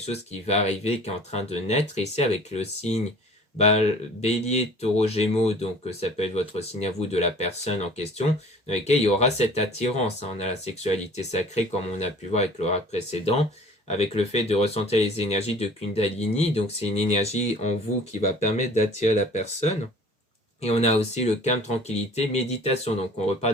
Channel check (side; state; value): both; normal; correlation 0.47